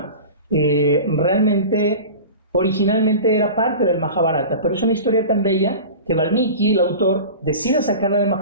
realmente originalmente era parte del Mahabharata, pero es una historia tan bella que Valmiki, el autor, decide sacarla del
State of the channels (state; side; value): inverted; both; correlation -0.34